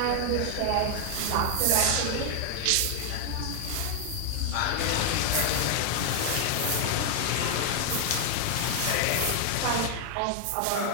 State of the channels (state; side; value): different; both; correlation 0.00